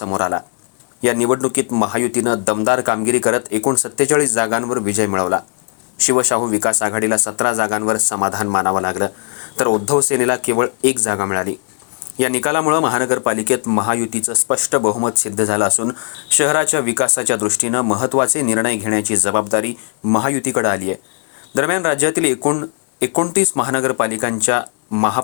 आला. या निवडणुकीत महायुतीनं दमदार कामगिरी करत एकूण 47 जागांवर विजय मिळवला. शिवशाहू विकास आघाडीला 17 जागांवर समाधान मानावं लागलं, तर उद्धव सेनेला केवळ 1 जागा मिळाली. या निकालामुळे महानगरपालिकेत महायुतीचं स्पष्ट बहुमत सिद्ध झालं असून शहराच्या विकासाच्या दृष्टीनं महत्त्वाचे निर्णय घेण्याची जबाबदारी महायुतीकडे आली आहे. दरम्यान राज्यातील एकूण 29 महानगरपालिकांच्या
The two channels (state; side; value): quieter; right; 39.2 dB